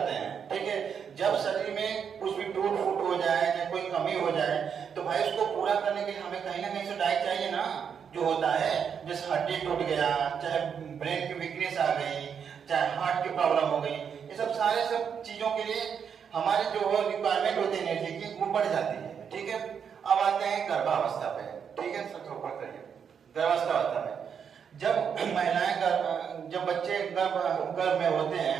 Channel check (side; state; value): left; quieter; 7.3 dB